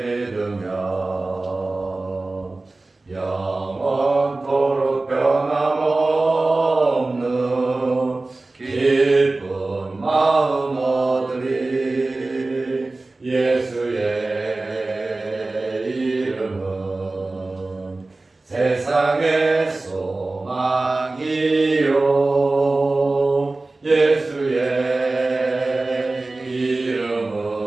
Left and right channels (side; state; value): left; quieter; 3.2 dB